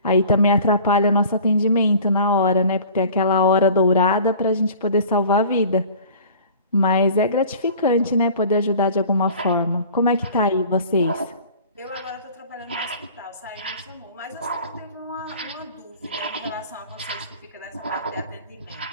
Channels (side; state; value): both; inverted; correlation -0.45